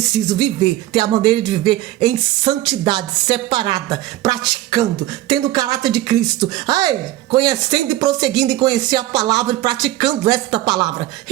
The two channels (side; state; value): left; quieter; 15.3 dB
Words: viver, ter a maneira de viver em santidade, separada, praticando, tendo o caráter de Cristo. Conhecendo e prosseguindo em conhecer a palavra e praticando esta palavra.